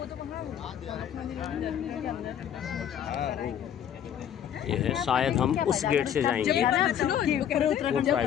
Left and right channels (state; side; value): quieter; right; 9.6 dB